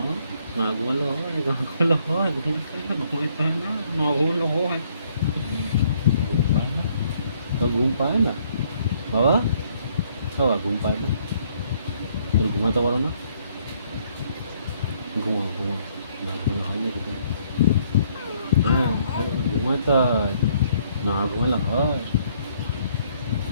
না ঘুমালে হয়, না ঘুমালে হয়, ঘুমাইতে হয় না, না ঘুমালে হয়। ঘুম পায় না, তো ঘুম পায় না বাবা, বাবা ঘুম পায় না, তুমি ঘুমাতে পারো না? ঘুমাও ঘুমাও, না ঘুমালে হয় নাকি তুমি? হ্যাঁ, ঘুমাইতে হয়, না ঘুমালে হয়?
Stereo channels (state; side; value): inverted; both; correlation -0.66